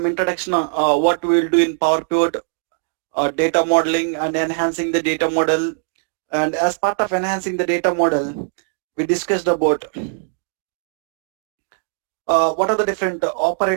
introduction on what we will do in Power Pivot, data modeling and enhancing the data model. And as part of enhancing the data model, we discussed about what are the different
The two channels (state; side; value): silent; left; digital silence